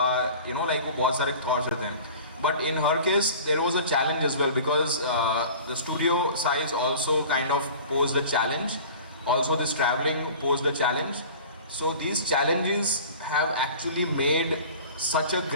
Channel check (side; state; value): both; inverted; correlation -0.41